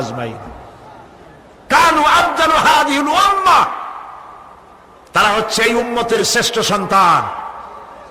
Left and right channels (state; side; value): identical; both; correlation 1.00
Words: কানু আফদালু হাযিহিল উম্মাহ, তারা হচ্ছে এই উম্মতের শ্রেষ্ঠ সন্তান।